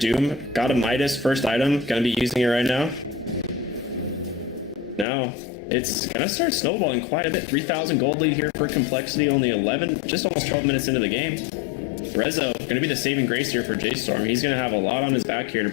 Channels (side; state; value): right; drops out; at 5.1 s